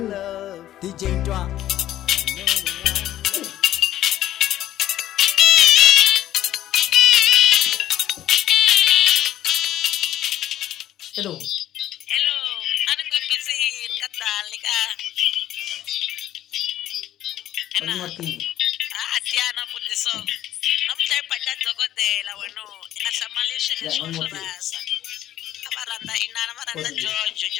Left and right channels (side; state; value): right; quieter; 12.8 dB